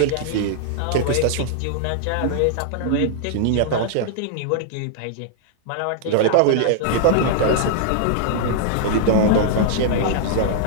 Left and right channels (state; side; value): different; both; correlation 0.00